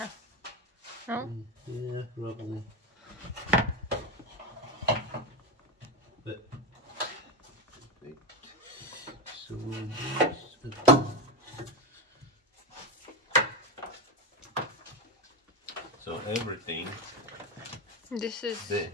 No? Yeah, probably. But wait. So we'll do this. everything. This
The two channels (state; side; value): normal; both; correlation 0.14